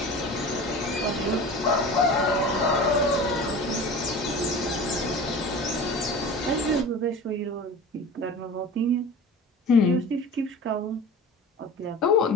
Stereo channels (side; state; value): both; normal; correlation 0.36